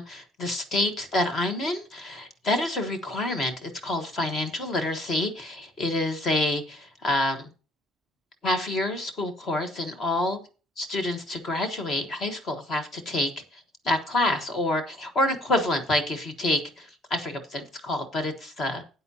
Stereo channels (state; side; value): normal; both; correlation 0.60